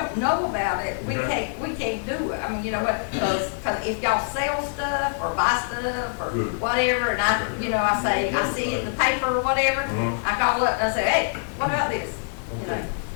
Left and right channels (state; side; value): silent; right; 62 dB below the other